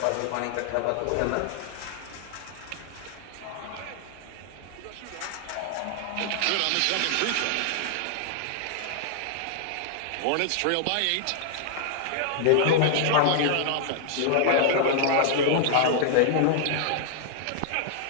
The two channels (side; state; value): both; different; correlation 0.00